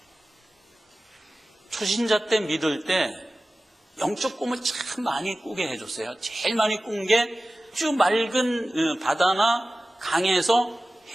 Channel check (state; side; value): normal; both; correlation 0.96